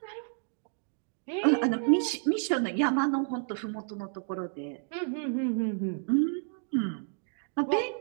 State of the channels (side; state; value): left; silent; digital silence